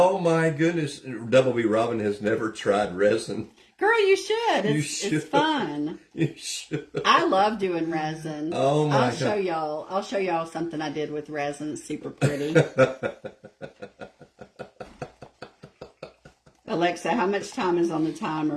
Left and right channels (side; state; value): both; identical; correlation 1.00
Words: my goodness. Double B Robin has never tried resin. Girl, you should. It's fun. You should. I love doing resin. Oh my God. I'll show y'all something I did with resin. It's super pretty. Alexa, how much time is on the